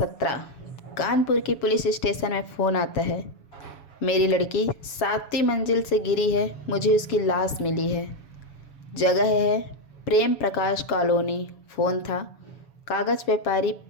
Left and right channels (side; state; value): right; late; 7.2 ms